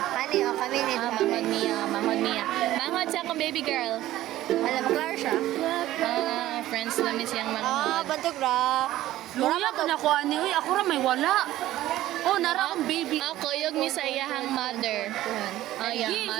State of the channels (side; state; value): left; quieter; 14.7 dB